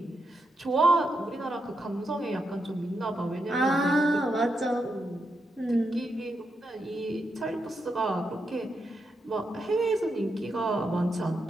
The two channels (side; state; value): both; normal; correlation 0.84